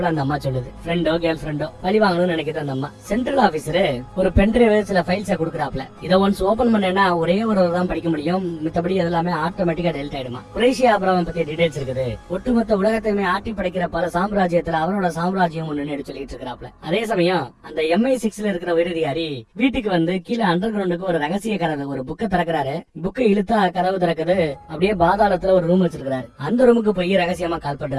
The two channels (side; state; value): both; identical; correlation 1.00